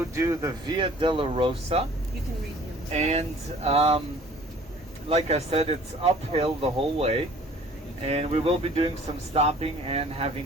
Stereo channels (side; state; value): both; normal; correlation 0.51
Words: do the Via Delorosa. You can read him. And like I said, it's uphill the whole way. And we will be doing some stopping and